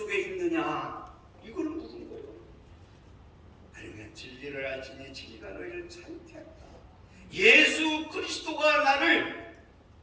있느냐? 이걸 묻은 거예요. 아니면 진리를 알지니 진리가 너희를 자유케 한다. 예수 그리스도가 나를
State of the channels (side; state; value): both; identical; correlation 1.00